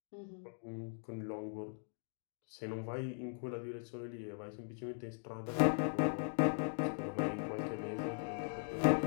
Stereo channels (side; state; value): right; silent; digital silence